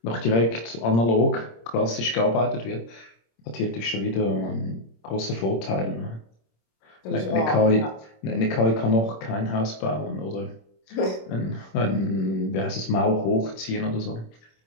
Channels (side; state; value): right; late; 26 ms